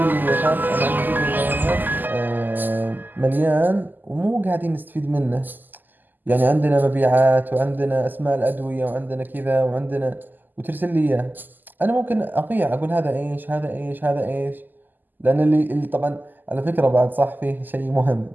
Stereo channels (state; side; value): late; left; 0.087 ms